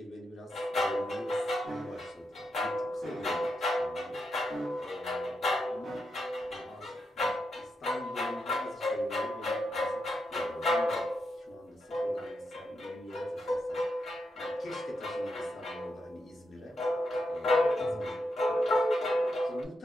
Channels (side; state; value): both; normal; correlation 0.84